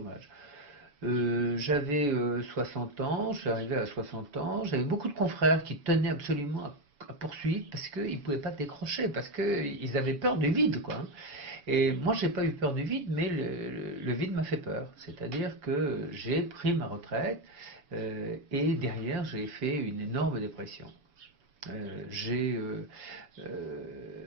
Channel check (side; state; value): left; late; 7.0 ms